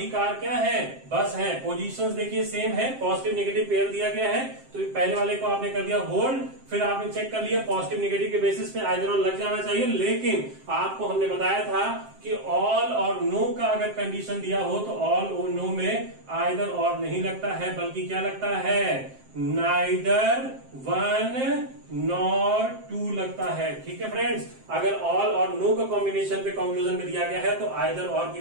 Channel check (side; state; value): left; late; 7.6 ms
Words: कार क्या है, बस है, पोजीशंस देखिए सेम है, पॉजिटिव नेगेटिव पेयर दिया गया है, तो पहले वाले को आपने कर दिया होल्ड, फिर आपने चेक कर लिया पॉजिटिव नेगेटिव के बेसिस पे आइदर और लग जाना चाहिए, लेकिन आपको हमने बताया था कि ऑल और नो का अगर कंडीशन दिया हो तो ऑल और नो में आइदर और नहीं लगता है, बल्कि क्या लगता है, नाइदर वन नॉर टू लगता है। ठीक है फ्रेंड्स, अगर ऑल और नो का कॉम्बिनेशन पे कंक्लूजन में दिया गया है तो आइदर और की